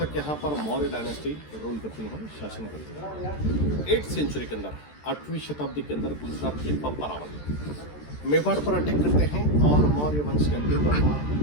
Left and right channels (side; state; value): right; late; 13 ms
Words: यहाँ पर मौर्य डायनेस्टी रूल करती है, शासन करती है। 8th सेंचुरी के अंदर, 8वीं शताब्दी के अंदर गुजरात के बप्पा रावल मेवाड़ पर अटैक करते हैं और मौर्य वंश के अंतिम